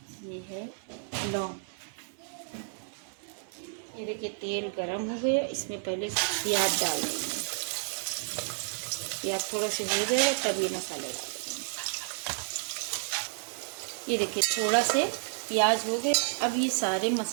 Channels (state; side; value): silent; left; 57 dB below the other